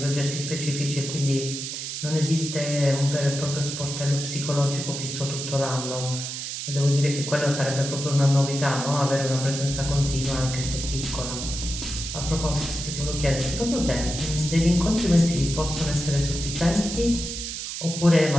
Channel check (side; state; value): right; noise; hiss, 6 dB below the sound